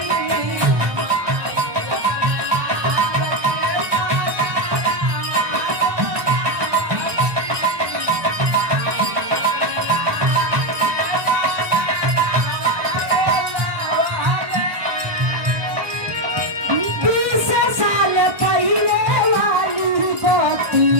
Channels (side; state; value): left; late; 1.2 ms